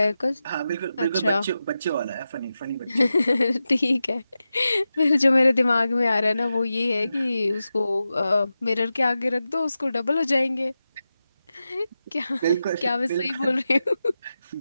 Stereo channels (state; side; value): inverted; both; correlation -0.92